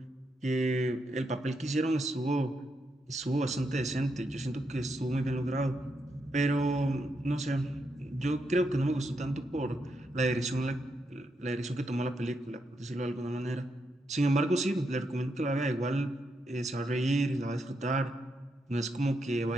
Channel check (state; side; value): normal; both; correlation 0.81